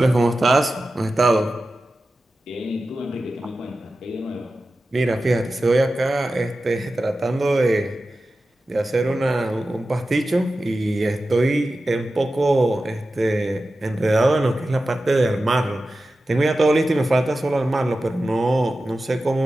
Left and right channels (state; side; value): normal; both; correlation 0.94